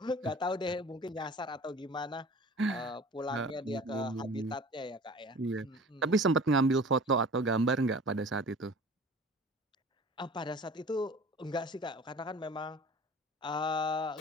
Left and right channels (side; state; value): both; normal; correlation 0.43